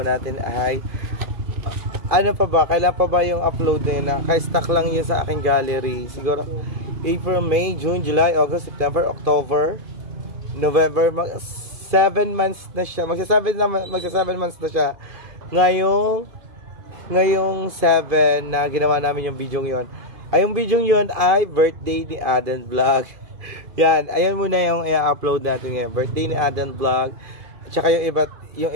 natin ay ano pa ba? Kailan pa ba yung upload na naka-stack lang yun sa aking gallery siguro April, May, June, July, August, September, October, November, 7 months na siya. Magsa 7 months na siya. Ngayong 7 na ginawa namin yung video yon. Ay, yung video yon ay birthday ni Aden Vlog. Yan, ayun muna yung i-upload natin ngayon. Birthday ni Aden Vlog. At saka yung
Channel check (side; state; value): left; late; 2.5 ms